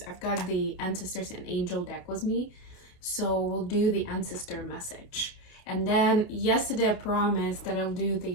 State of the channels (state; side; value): late; right; 28 ms